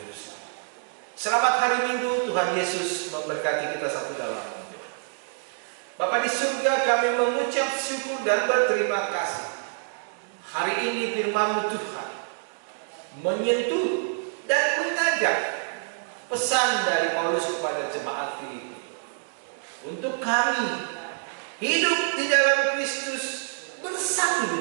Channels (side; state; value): left; silent; digital silence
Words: Selamat. Selamat hari Minggu. Tuhan Yesus memberkati kita satu dalam doa. Bapa di surga, kami mengucap syukur dan berterima kasih. Hari ini firman-Mu Tuhan menyentuh dan mengajak pesan dari Paulus kepada jemaat Filipi untuk kami hidup di dalam Kristus bersatu